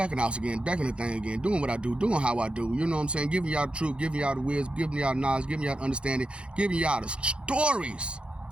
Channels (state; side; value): late; left; 0.057 ms